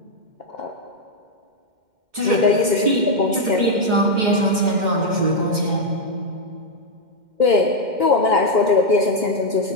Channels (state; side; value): late; left; 2.1 ms